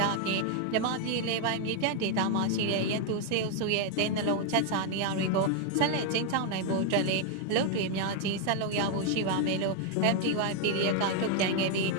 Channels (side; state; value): both; different; correlation 0.00